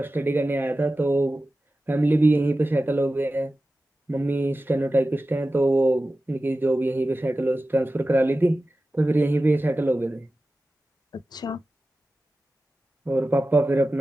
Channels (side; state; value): both; normal; correlation 0.95